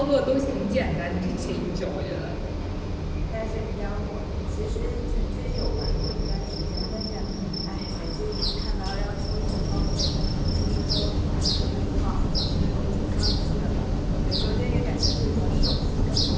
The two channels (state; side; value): identical; both; correlation 1.00